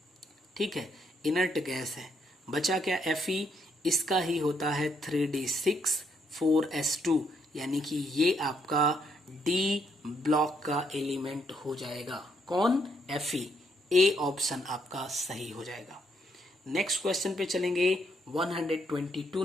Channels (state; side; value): normal; both; correlation 0.74